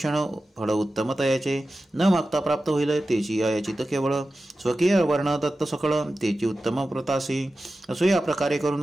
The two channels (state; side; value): normal; both; correlation 0.94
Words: फळ उत्तम तयाचे. न मागता प्राप्त होईल तेची अयाचित केवळ. स्वकीय वर्ण दत्त सकळ तेची उत्तम व्रतासी. असो या प्रकारे